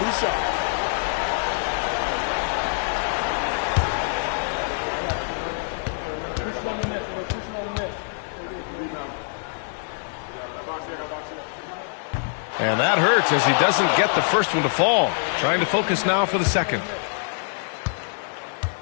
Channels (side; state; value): right; silent; digital silence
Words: shots. And that hurts as he doesn't get the first one to fall. Trying to focus now for the second.